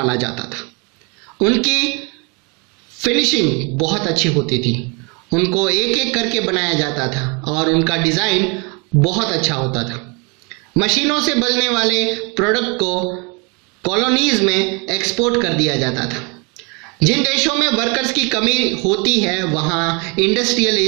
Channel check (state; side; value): quieter; left; 31.5 dB